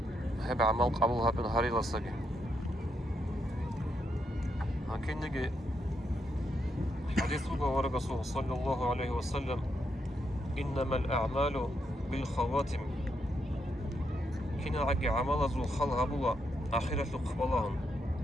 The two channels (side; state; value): both; normal; correlation 0.80